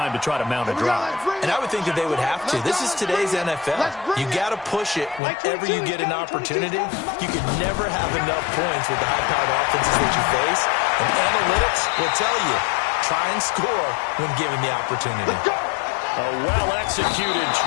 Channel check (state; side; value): drops out; right; at 5.2 s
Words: to try to mount a drive. And I would think that they would have to. This is today's NFL. You got to push it whenever you get an opportunity. You can never have enough points with the high-powered offenses that you face. And analytics will tell you, try and score when given the opportunity. A well-executed